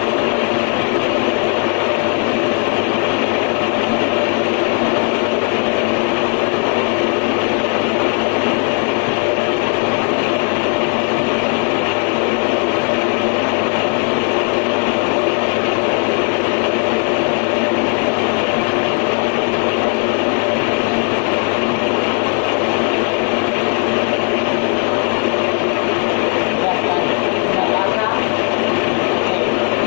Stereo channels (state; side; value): quieter; right; 37.9 dB